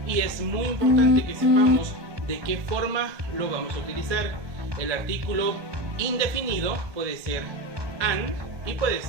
y es muy importante que sepamos de qué forma lo vamos a utilizar. El artículo indefinido puede ser an y puede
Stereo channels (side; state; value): left; late; 1.2 ms